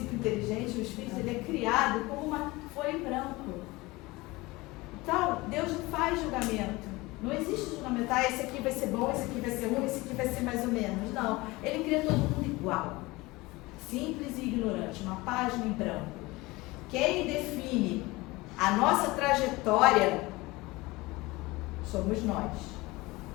inteligente, o espírito, ele é criado como uma folha em branco. Então, Deus não faz julgamento. Não existe julgamento, esse aqui vai ser bom, esse aqui vai ser ruim, esse aqui vai ser mais ou menos. Não, ele cria todo mundo igual. Simples e ignorante, uma página em branco. Quem define a nossa trajetória somos nós.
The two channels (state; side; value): quieter; right; 21.7 dB